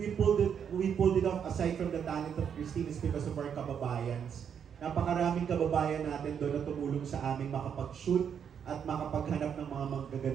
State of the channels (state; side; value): quieter; left; 7.8 dB